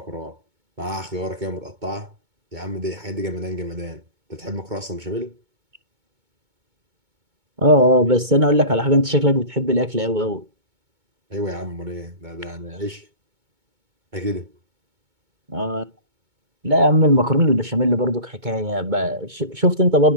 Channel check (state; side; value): late; left; 2.2 ms